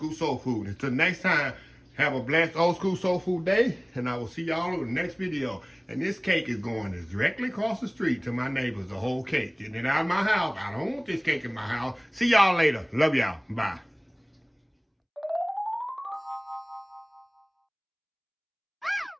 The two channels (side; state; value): both; identical; correlation 1.00